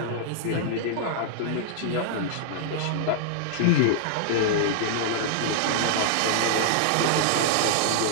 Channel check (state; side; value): different; both; correlation -0.01